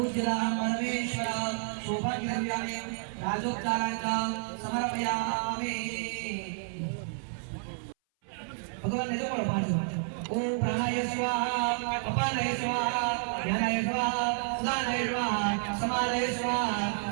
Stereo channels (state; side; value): silent; left; 58 dB below the other